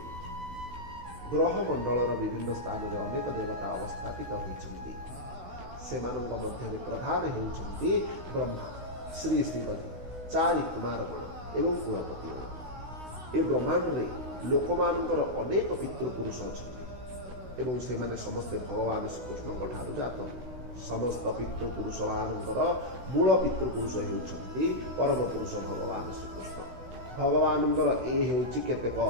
ଗ୍ରହମଣ୍ଡଳର ବିଭିନ୍ନ ସ୍ଥାନରେ ଅନେକ ଦେବତା ଅବସ୍ଥାପିତ ହୋଇଛନ୍ତି। ସେମାନଙ୍କ ମଧ୍ୟରେ ପ୍ରଧାନ ହେଉଛନ୍ତି ବ୍ରହ୍ମା, ଶ୍ରୀ ଶ୍ରୀପତି, 4 କୁମାରଗଣ ଏବଂ କୁଳପତିଗଣ। ଏ ବ୍ରହ୍ମାଣ୍ଡରେ ଲୋକମାନଙ୍କର ଅନେକ ପିତୃପୁରୁଷ ଅଛନ୍ତି ଏବଂ ସେମାନେ ସମସ୍ତେ ଭଗବାନ ଶ୍ରୀକୃଷ୍ଣଙ୍କ ଠାରୁ ଜାତ। ସମସ୍ତ ପିତୃପୁରୁଷମାନଙ୍କର ମୂଳ ପିତୃପୁରୁଷ ହେଉଛନ୍ତି ପରମ ପୁରୁଷ ଭଗବାନ ଶ୍ରୀକୃଷ୍ଣ। ଭଗବାନଙ୍କର ଏ ହେଉଛି କେତେକ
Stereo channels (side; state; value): left; late; 16 ms